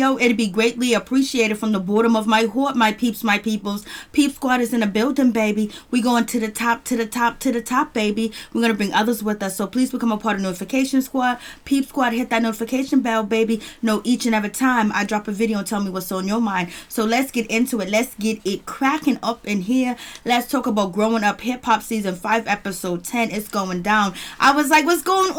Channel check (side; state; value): both; identical; correlation 1.00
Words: It'd be greatly appreciated from the bottom of my heart, my peeps, my peoples. Peep Squad is in the building, baby. We going to the top, to the top, to the top, baby. We're going to bring others with us. So please become a part of Notification Squad. Peep Squad, hit that notification bell, baby. Know each and every time I drop a video and tell me what's on your mind. So let's get into it. Let's get it cracking up in here. Let's talk about Growing Up Hip Hop Season 5, Episode 10. It's going down. I was like, what's going